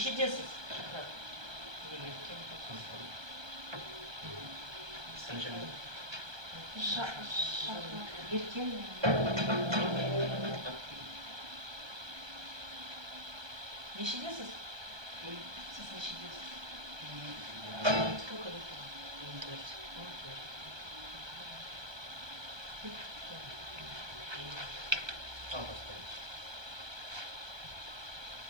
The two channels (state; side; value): late; left; 1.3 ms